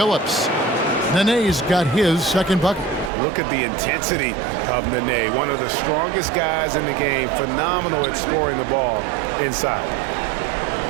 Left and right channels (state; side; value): drops out; left; at 3.1 s